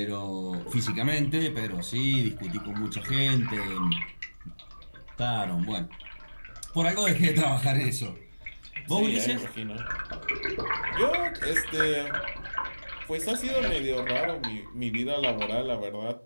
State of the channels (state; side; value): inverted; both; correlation -1.00